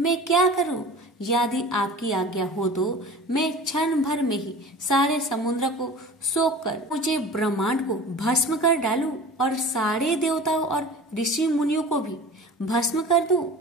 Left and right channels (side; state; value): both; normal; correlation 0.39